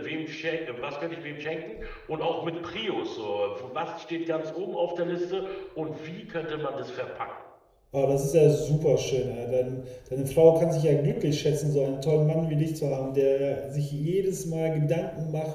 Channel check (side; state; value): both; identical; correlation 1.00